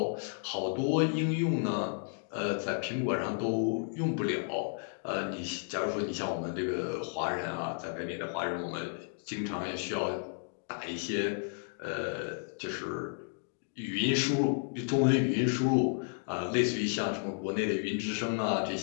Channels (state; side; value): silent; right; 56 dB below the other